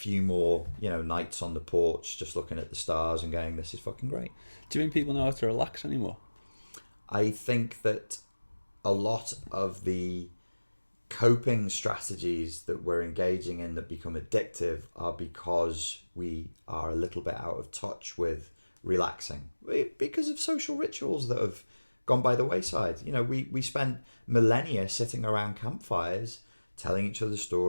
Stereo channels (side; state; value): both; inverted; correlation -1.00